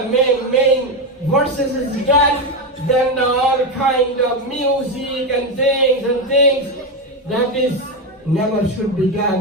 main verses is done. Then all kind of music and things that is never should be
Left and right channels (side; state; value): both; normal; correlation 0.11